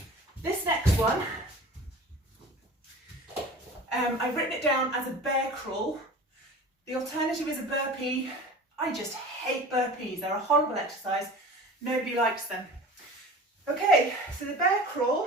this next one, I've written it down as a bear crawl. The alternative is a burpee. I just hate burpees. They're a horrible exercise. Nobody likes them. Okay, so the bear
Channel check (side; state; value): both; normal; correlation 0.38